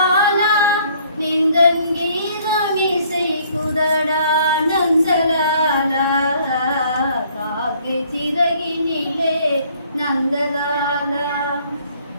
நின்றன் கீதமிசை குதடா நந்தலாலா காக்கை சிறகினிலே நந்தலாலா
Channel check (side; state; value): both; inverted; correlation -0.61